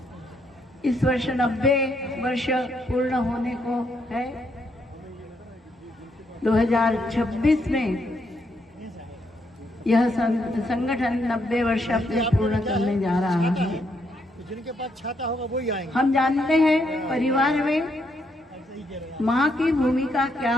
इस वर्ष 90 वर्ष पूर्ण होने को है। 2026 में यह संगठन 90 वर्ष अपने पूर्ण करने जा रहा है। जिनके पास छाता होगा वही आएंगे। हम जानते हैं परिवार में माँ की भूमिका क्या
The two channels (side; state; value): both; normal; correlation 0.76